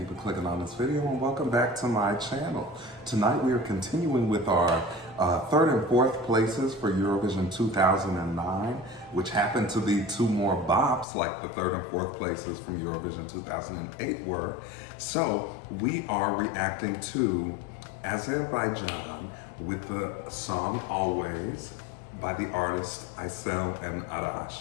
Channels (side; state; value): right; drops out; at 11.1 s